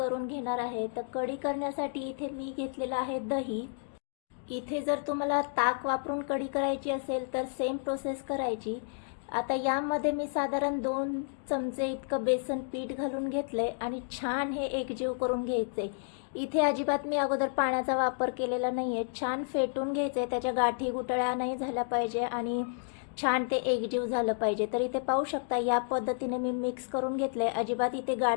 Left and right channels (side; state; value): right; silent; digital silence